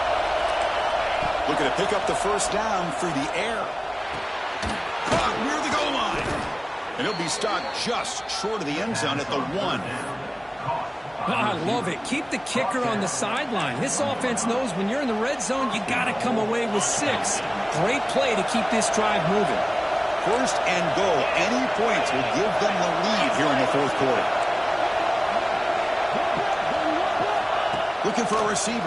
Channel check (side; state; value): both; identical; correlation 1.00